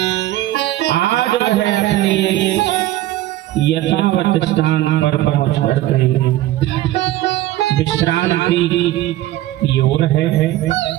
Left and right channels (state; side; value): quieter; left; 15.1 dB